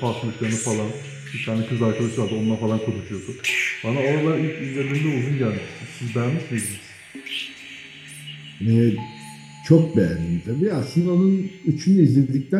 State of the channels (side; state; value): both; identical; correlation 1.00